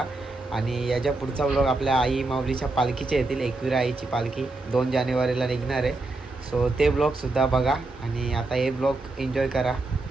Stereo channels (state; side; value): quieter; left; 3.2 dB